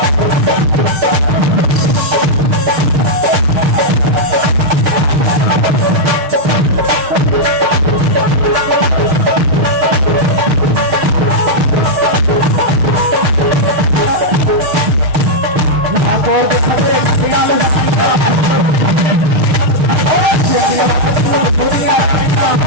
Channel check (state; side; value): late; left; 6.5 ms